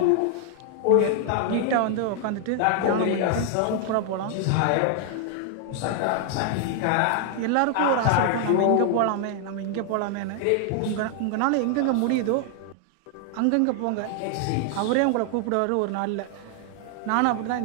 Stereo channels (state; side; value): different; both; correlation 0.00